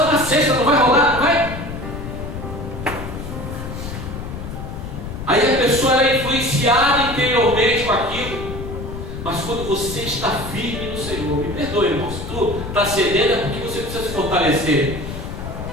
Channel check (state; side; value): noise; left; rumble, 8 dB below the sound